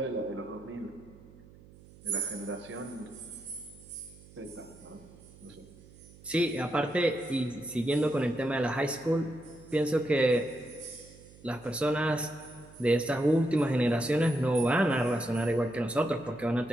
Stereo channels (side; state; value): right; noise; hum, 22 dB below the sound